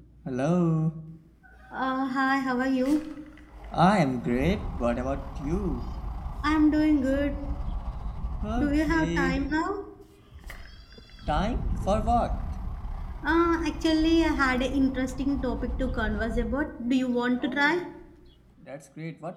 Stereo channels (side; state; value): both; identical; correlation 1.00